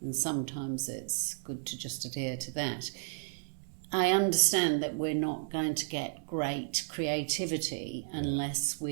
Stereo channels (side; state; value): left; silent; digital silence